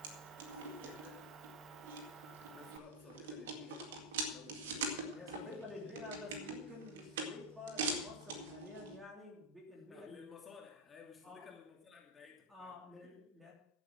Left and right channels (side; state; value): both; normal; correlation -0.01